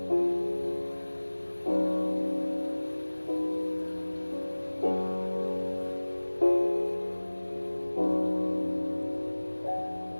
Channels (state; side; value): inverted; both; correlation -1.00